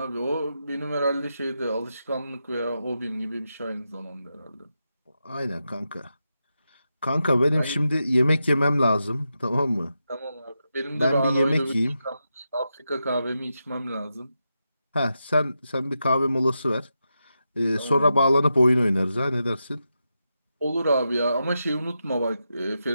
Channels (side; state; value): both; inverted; correlation -0.88